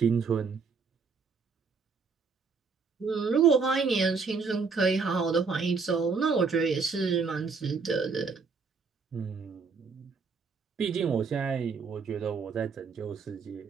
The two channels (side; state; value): left; quieter; 5.0 dB